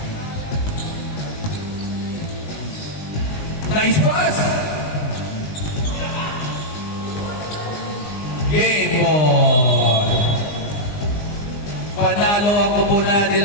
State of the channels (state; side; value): late; right; 19 ms